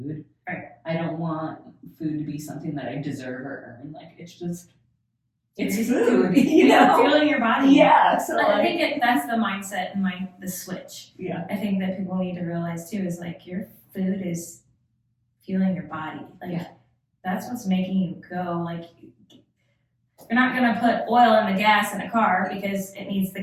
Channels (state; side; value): identical; both; correlation 1.00